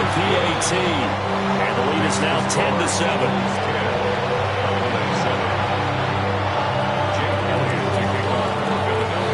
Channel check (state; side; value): identical; both; correlation 1.00